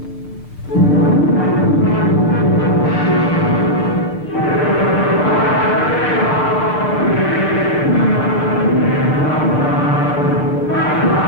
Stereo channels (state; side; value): normal; both; correlation -0.07